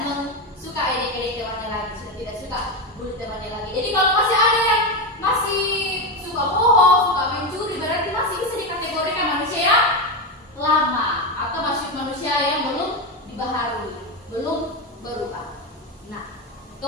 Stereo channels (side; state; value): both; normal; correlation 0.13